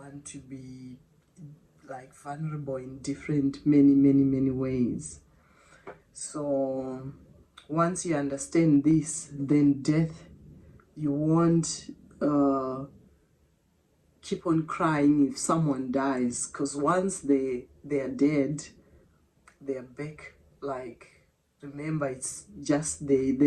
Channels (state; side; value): identical; both; correlation 1.00